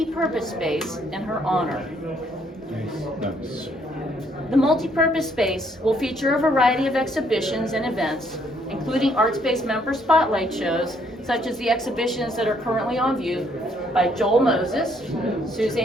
space in her honor. Nice. The multi-purpose space will feature a variety of exhibitions and events, including Artspace member spotlight shows, such as the exhibitions that are currently on view by Joel Moses,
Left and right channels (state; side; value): normal; both; correlation 0.68